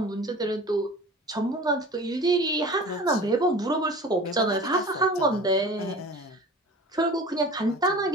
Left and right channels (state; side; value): normal; both; correlation 0.40